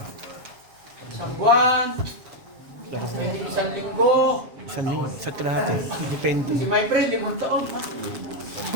Isang buwan, isang linggo, Sa kalahati. Depende. si my friend, 5 taon.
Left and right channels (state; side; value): late; left; 7.4 ms